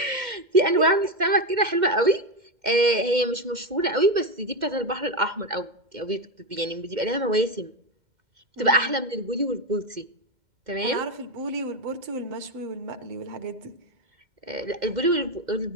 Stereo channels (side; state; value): left; late; 2.1 ms